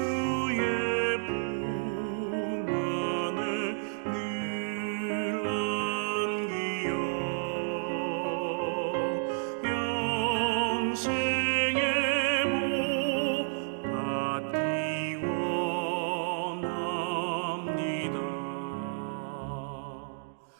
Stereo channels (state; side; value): silent; left; digital silence